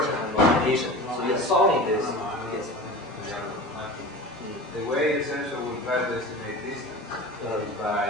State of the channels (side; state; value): both; normal; correlation 0.34